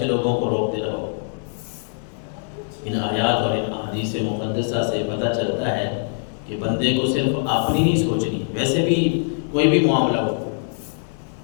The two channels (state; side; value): silent; right; digital silence